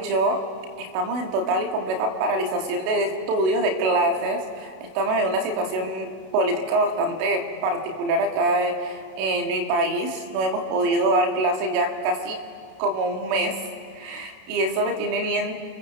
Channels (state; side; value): late; left; 32 ms